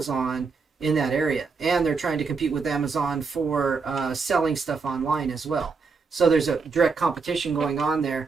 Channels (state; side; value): quieter; left; 4.8 dB